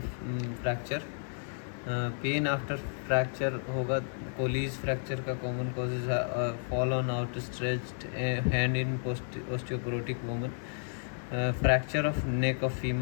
fracture. Pain after fracture होगा. Colles fracture का common causes है. Fall on outstretched hand in osteoporotic woman. Fracture of neck of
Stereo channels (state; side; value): silent; right; digital silence